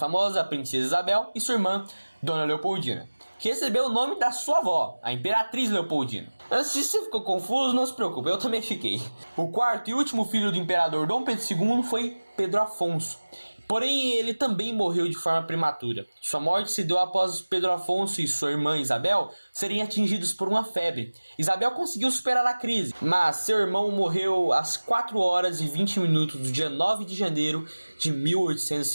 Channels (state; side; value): inverted; both; correlation -1.00